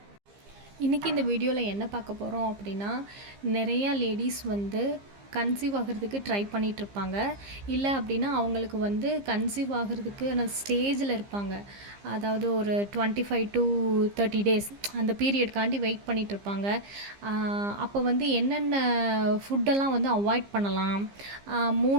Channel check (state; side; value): late; left; 15 ms